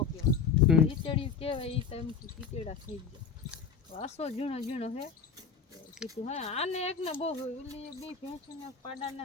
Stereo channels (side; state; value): right; quieter; 6.0 dB